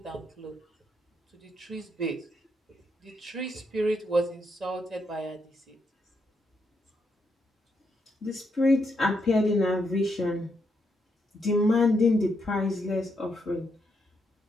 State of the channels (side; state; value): both; normal; correlation 0.79